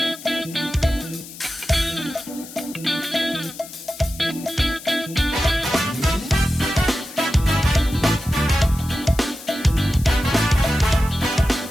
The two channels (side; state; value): left; noise; hiss, 15 dB below the sound